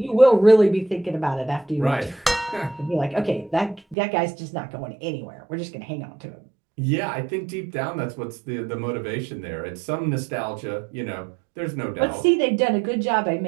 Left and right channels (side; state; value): left; drops out; at 4.0 s